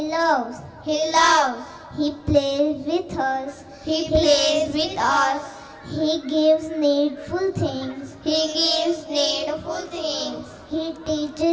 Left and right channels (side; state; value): both; identical; correlation 1.00